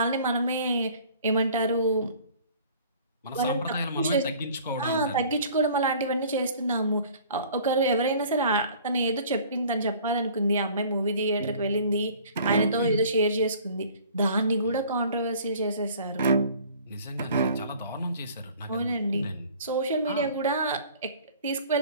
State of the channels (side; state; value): both; inverted; correlation -0.50